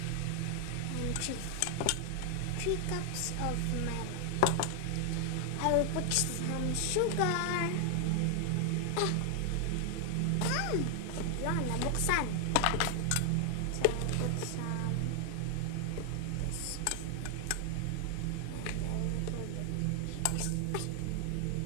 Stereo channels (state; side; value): different; both; correlation 0.00